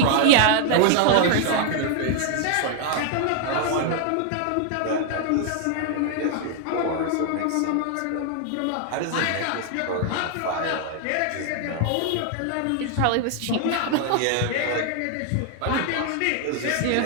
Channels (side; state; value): both; different; correlation 0.00